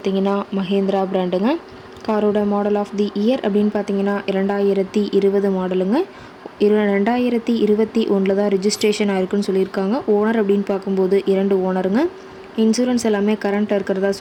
மஹேந்திரா பிராண்டுங்க. காரோட மாடல் ஆஃப் தி இயர் அப்படின்னு பார்த்தீங்கன்னா 2020 மாடலுங்க. 2021 தான் ரிஜிஸ்ட்ரேஷன் ஆயிருக்குன்னு சொல்லியிருக்காங்க. ஓனர் அப்படின்னு பார்க்கும்போது 2 ஓனருங்க. இன்சூரன்ஸ் எல்லாமே கரண்ட்டாக இருக்கிறதா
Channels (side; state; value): both; identical; correlation 1.00